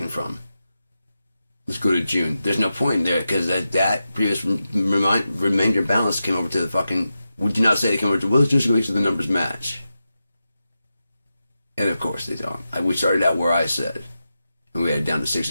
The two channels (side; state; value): both; inverted; correlation -0.90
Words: from. Let's go to June. There's no point in there because that previous remainder balance came over to the fucking. We do not say they came over to. Well, let's just make sure the numbers match. And of course they don't. We started out where I said, and we had it down to